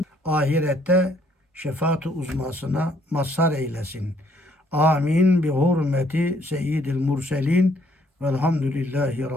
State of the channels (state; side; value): normal; both; correlation 0.66